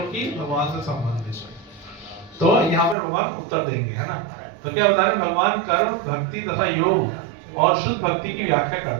कि भगवान से संबंधित है। तो यहाँ पर भगवान उत्तर देंगे, है ना। तो क्या बता रहे हैं, भगवान कर्म भक्ति तथा योग और शुद्ध भक्ति की व्याख्या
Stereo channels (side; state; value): left; drops out; at 3.0 s